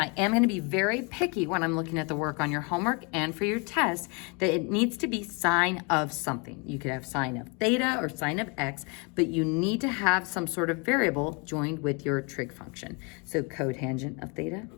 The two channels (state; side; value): quieter; right; 32.0 dB